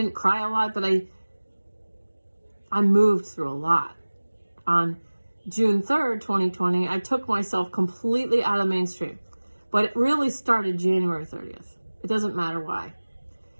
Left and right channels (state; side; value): inverted; both; correlation -1.00